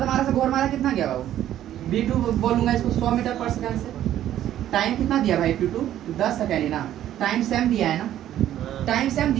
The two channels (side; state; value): left; quieter; 12.0 dB